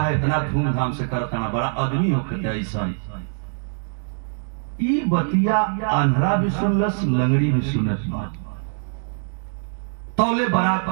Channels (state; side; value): silent; left; digital silence